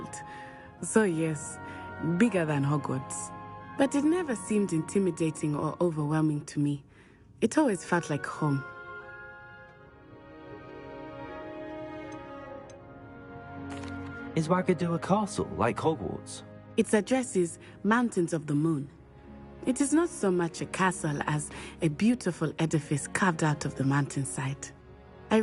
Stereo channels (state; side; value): identical; both; correlation 1.00